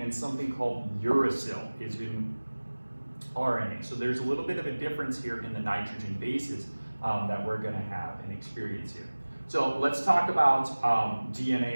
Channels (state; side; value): inverted; both; correlation -1.00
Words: and something called uracil is in RNA. So there's a little bit of a difference here in the nitrogen bases that we're going to have and experience here. So let's talk about